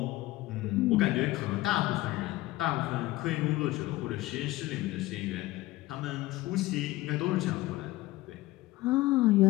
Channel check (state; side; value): quieter; right; 18.2 dB